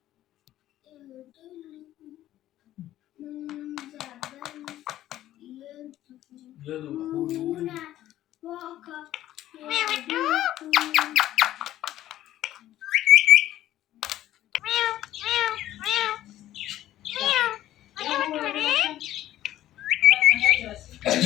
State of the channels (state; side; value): quieter; right; 13.5 dB